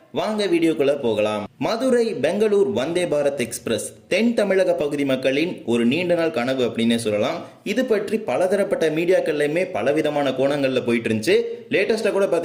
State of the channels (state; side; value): identical; both; correlation 1.00